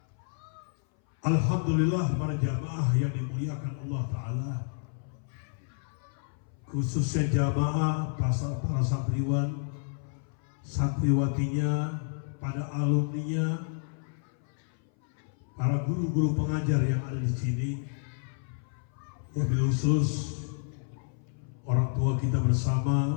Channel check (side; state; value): right; silent; 58 dB below the other